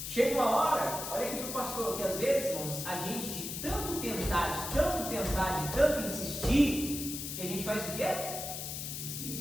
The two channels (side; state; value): left; noise; hiss, 6 dB below the sound